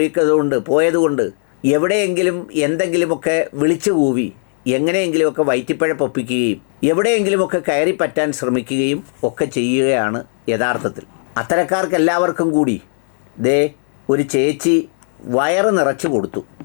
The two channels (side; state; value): right; silent; digital silence